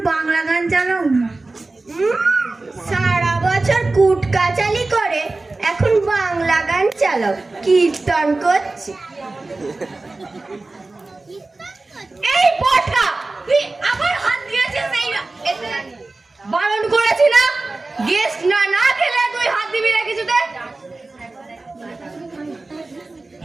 বাংলা গান চালাও না। সারা বছর কুট কাচালি করে এখন বাংলা গান চালাও, কীর্তন করছে। এই পটকা, তুই আবার হাত দিয়েছিস এই বারণ করেছি না? গেস্ট না না খেলে তুই হাত দিবি না কিছুতে।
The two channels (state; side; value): quieter; left; 3.3 dB